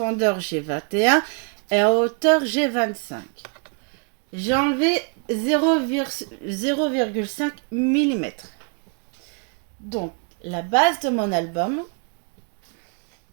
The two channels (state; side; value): quieter; left; 39.9 dB